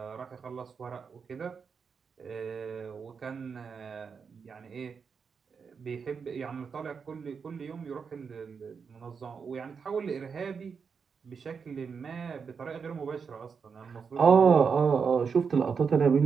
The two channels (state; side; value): quieter; left; 5.9 dB